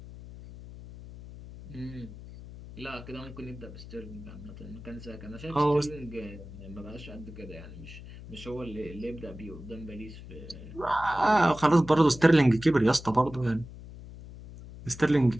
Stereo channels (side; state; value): left; noise; hum, 15 dB below the sound